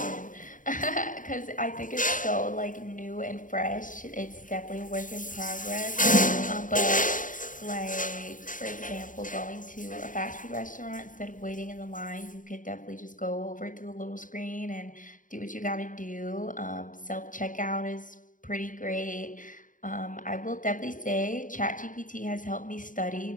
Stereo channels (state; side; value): late; right; 0.38 ms